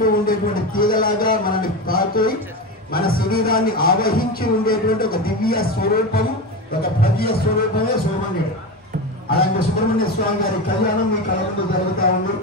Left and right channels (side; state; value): both; normal; correlation 0.21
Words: ఉండేటువంటి తీగలాగా మనల్ని తాకి మన శరీరాన్ని ఆవహించి ఉండేటువంటి ఒక దివ్య స్వరూపం, ఒక భవ్య స్వరూపమే సుబ్రహ్మణ్యుడు. అలాంటి సుబ్రహ్మణ్య స్వామి గారి కళ్యాణం మీ కళ ముందు జరుగుతూ ఉంది.